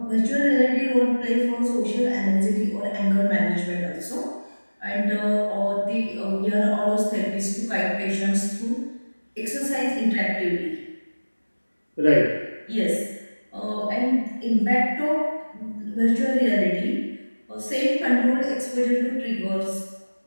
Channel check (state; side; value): inverted; both; correlation -1.00